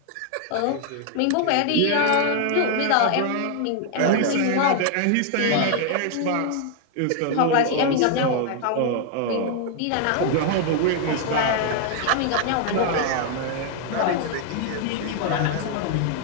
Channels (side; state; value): both; different; correlation 0.00